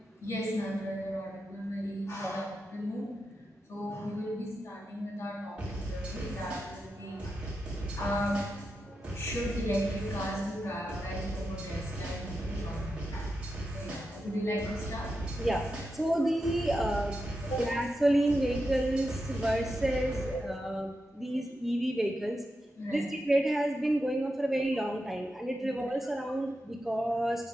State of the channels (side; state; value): both; normal; correlation 0.88